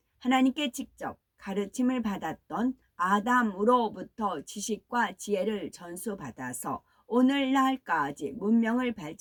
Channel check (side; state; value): both; identical; correlation 1.00